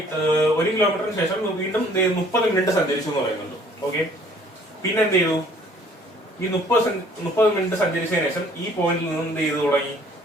1 കിലോമീറ്ററിന് ശേഷം വീണ്ടും 30 മിനിറ്റ് സഞ്ചരിച്ചു എന്ന് പറയുന്നുണ്ട്. ഓക്കെ, പിന്നെ എന്ത് ചെയ്തു? ഈ 30 മിനിറ്റ് സഞ്ചരിച്ചതിന് ശേഷം ഈ പോയിന്റിൽ നിന്ന് എന്ത് ചെയ്തു തുടങ്ങി?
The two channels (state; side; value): normal; both; correlation 0.57